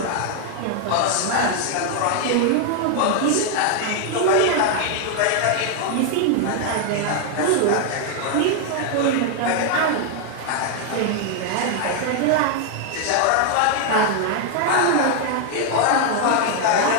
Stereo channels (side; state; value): both; different; correlation 0.00